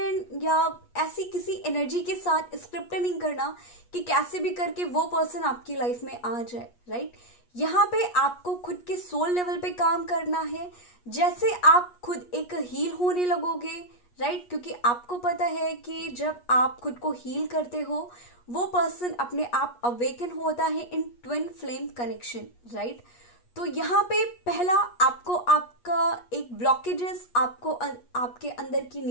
या ऐसी किसी एनर्जी के साथ स्क्रिप्ट नहीं करना कि कैसे भी करके वो पर्सन आपकी लाइफ में आ जाए, राइट। यहाँ पे आपको खुद के सोल लेवल पे काम करना है, जैसे आप खुद एक हील होने लगोगे, राइट, क्योंकि आपको पता है कि जब आप खुद को हील करते हो वो पर्सन अपने आप अवेकन होता है इन ट्विन फ्लेम कनेक्शन, राइट। तो यहाँ पे पहला आपको आपका एक ब्लॉकेजेस, आपको आपके अंदर की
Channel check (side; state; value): right; late; 8.3 ms